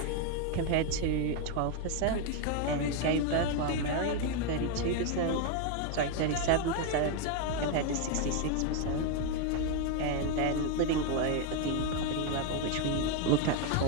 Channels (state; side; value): different; both; correlation 0.01